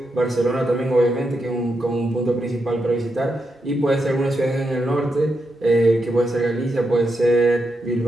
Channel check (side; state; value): both; normal; correlation 0.84